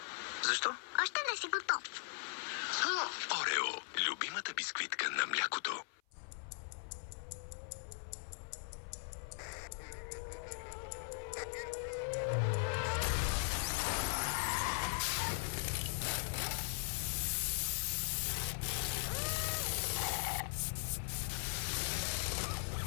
Защо? още не си готов. Орео. Любимата бисквитка на млякото.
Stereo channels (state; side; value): silent; right; 51 dB below the other